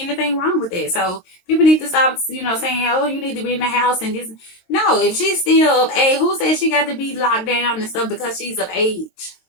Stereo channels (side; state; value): right; late; 22 ms